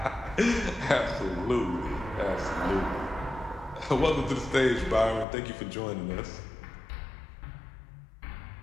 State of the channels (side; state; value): right; drops out; at 5.2 s